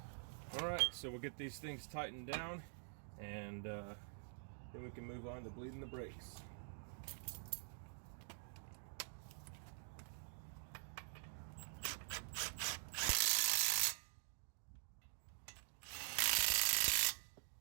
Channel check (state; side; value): silent; left; digital silence